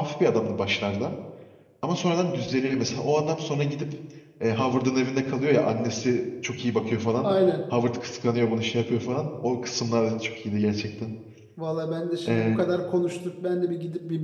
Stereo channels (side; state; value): both; identical; correlation 1.00